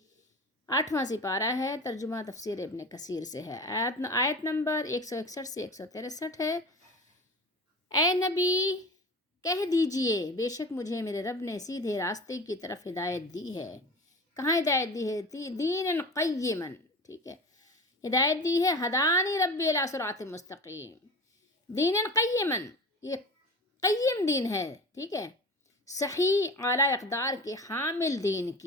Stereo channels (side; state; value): both; normal; correlation 0.34